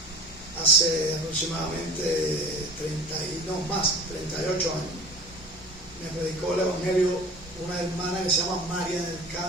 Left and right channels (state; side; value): normal; both; correlation 0.38